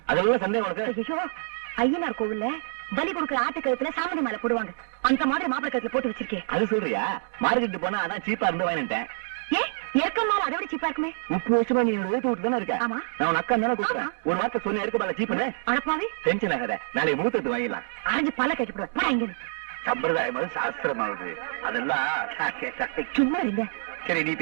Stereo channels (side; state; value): left; silent; digital silence